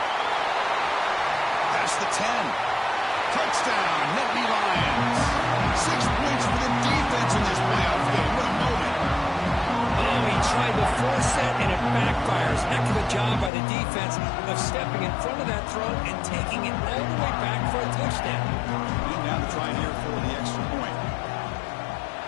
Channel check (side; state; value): right; drops out; at 13.5 s